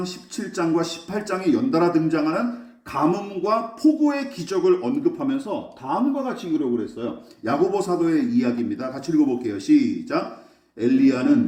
17장과 18장에 연달아 등장하는 가뭄과 폭우의 기적을 언급하면서 다음과 같이 기록을 했어요. 야고보 사도의 이야기입니다. 같이 읽어볼게요. 시작.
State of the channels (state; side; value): identical; both; correlation 1.00